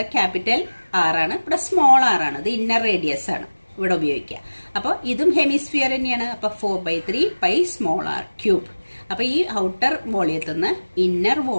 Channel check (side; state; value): both; inverted; correlation -1.00